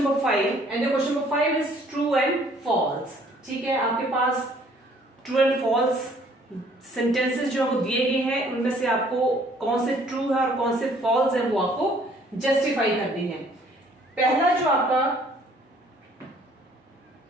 number 5, and your question number 5 is true and false. ठीक है, आपके पास true and false sentences जो आपको दिए गए हैं, उनमें से आपको कौन से ट्रू है और कौन से फॉल्स है वो आपको जस्टिफाई करनी है। पहला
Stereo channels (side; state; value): both; normal; correlation 0.59